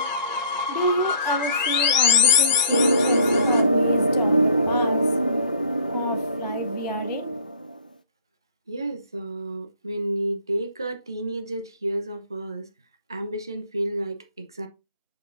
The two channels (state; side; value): inverted; both; correlation -0.53